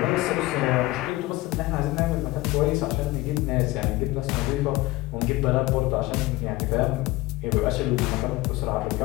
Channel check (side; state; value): right; quieter; 19.5 dB